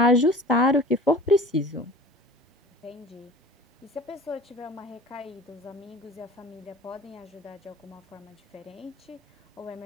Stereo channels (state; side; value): normal; both; correlation 0.42